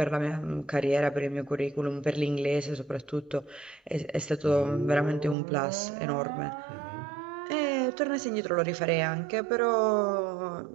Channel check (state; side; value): drops out; left; at 5.4 s